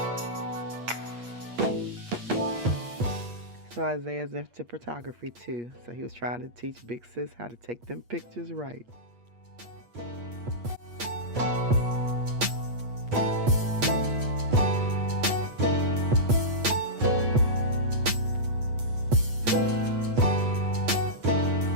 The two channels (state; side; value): late; left; 8.4 ms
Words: So Isaiah's into photography too. So he was trying to teach Big Sis how to take them pictures right.